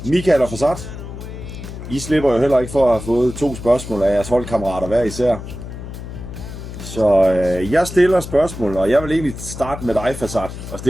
Michael og Farsad. I slipper jo heller ikke for at have fået 2 spørgsmål af jeres holdkammerater hver især. Så jeg stiller spørgsmål, og jeg vil egentlig starte med dig, Farsad, og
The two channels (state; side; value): noise; left; hum, 10 dB below the sound